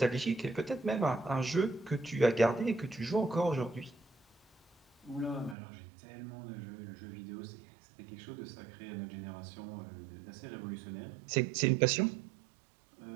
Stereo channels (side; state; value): left; drops out; at 5.6 s